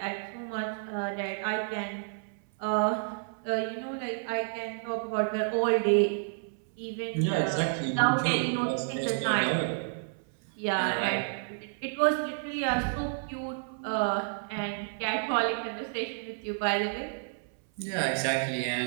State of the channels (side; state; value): left; silent; 58 dB below the other